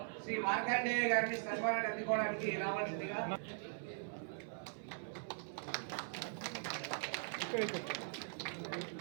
శ్రీ మార్కండేయ గారిని సన్మానాన్ని అందుకోవడానికి రావాల్సిందిగా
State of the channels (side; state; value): left; silent; 50 dB below the other